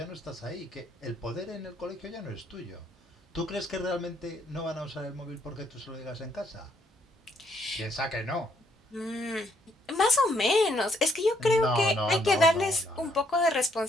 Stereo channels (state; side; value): normal; both; correlation 0.70